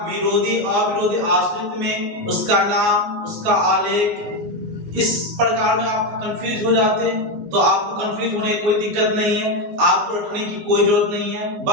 विरोधी अविरोधी आश्रित में उसका नाम, उसका आलेख इस प्रकार में आप कंफ्यूज हो जाते हैं? तो आपको कंफ्यूज होने की कोई दिक्कत नहीं है, आपको रखने की कोई जरूरत नहीं है।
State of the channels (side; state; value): left; late; 19 ms